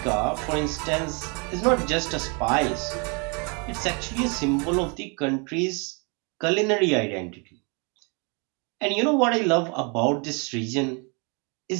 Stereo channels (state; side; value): quieter; left; 34.1 dB